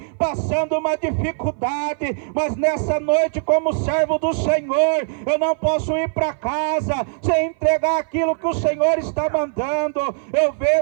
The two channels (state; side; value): silent; left; 59 dB below the other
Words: passando uma dificuldade, mas nessa noite, como servo do Senhor, eu não posso ir para casa sem entregar aquilo que o Senhor está mandando. Eu